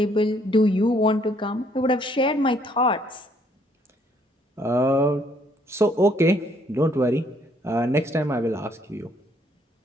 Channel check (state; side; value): normal; both; correlation 0.66